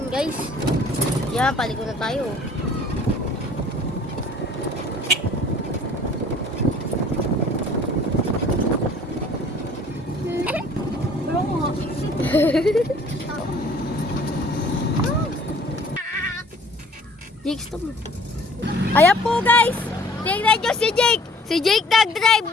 guys. Yan, paliko na tayo. Jake, stop mo. Ayan po, guys. Tingnan nyo si Jake. Si Jake nag-drive.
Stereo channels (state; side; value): normal; both; correlation 0.53